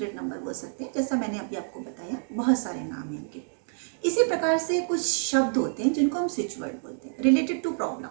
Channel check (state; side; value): silent; left; digital silence